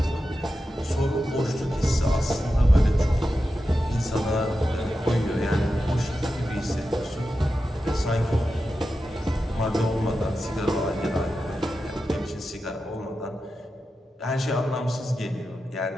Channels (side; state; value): both; normal; correlation 0.91